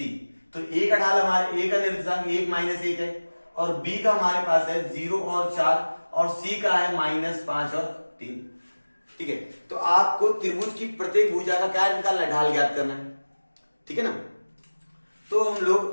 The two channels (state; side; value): inverted; both; correlation -1.00